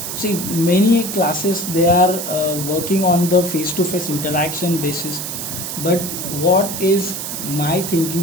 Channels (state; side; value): noise; right; hiss, 5 dB below the sound